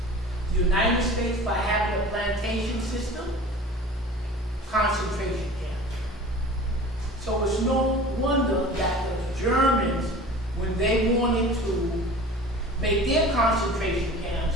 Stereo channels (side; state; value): both; normal; correlation 0.40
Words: The United States, by having a plantation system, concentration camps. So it's no wonder that the Germans, when they wanted to make their concentration